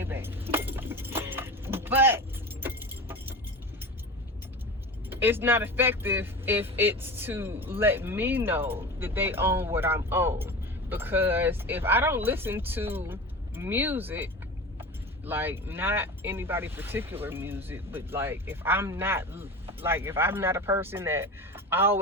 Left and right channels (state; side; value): normal; both; correlation 0.30